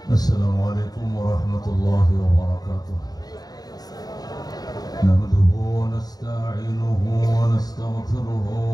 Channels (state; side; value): late; right; 0.19 ms